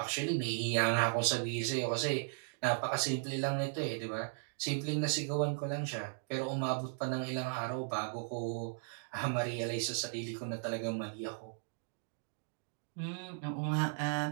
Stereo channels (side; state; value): left; silent; digital silence